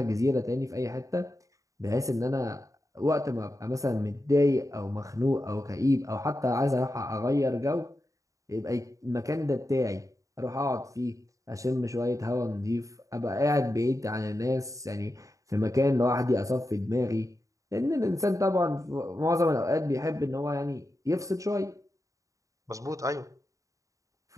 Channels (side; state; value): left; late; 0.16 ms